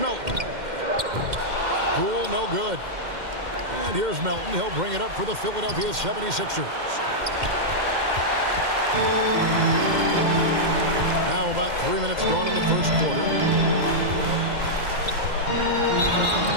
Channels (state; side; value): late; left; 2.1 ms